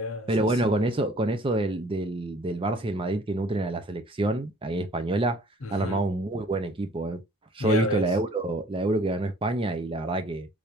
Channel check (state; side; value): normal; both; correlation 0.54